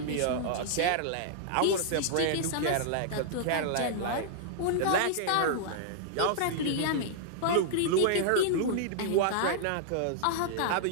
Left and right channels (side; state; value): both; different; correlation -0.01